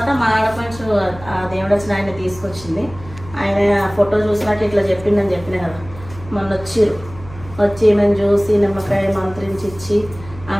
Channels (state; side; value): noise; right; hum, 17 dB below the sound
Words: మా ఆడపడుచు ఆ దేవుడు వచ్చిన ఆయన తీసుకొచ్చింది. ఆయన ఫోటో చూసినాక ఇట్లా చెప్పిందని చెప్పిన కదా. మొన్న వచ్చి మేము చూసి నిమ్మకాయ మంత్రించి ఇచ్చి